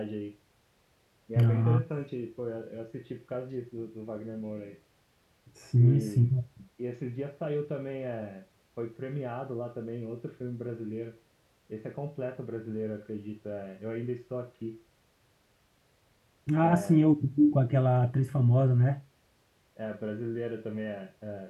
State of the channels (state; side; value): identical; both; correlation 1.00